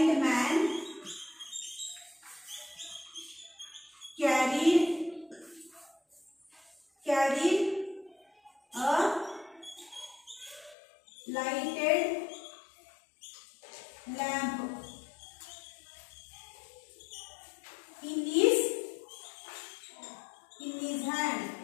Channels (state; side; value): drops out; right; at 10.8 s